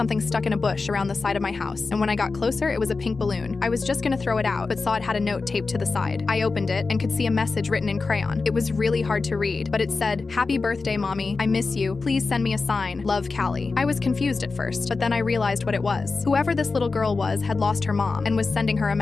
stuck in a bush around the side of my house, and when I got closer, it was a pink balloon. I was just gonna throw it out, but saw it had a note taped to the side. I opened it and could see a message written in crayon. It was really hard to read, but it said, "Happy birthday, Mommy. I miss you. Please send me a sign. Love, Callie." I was confused at first, but then I realized what it was. Whoever this little girl was had lost her mom and was sending her a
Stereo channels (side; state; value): right; quieter; 4.1 dB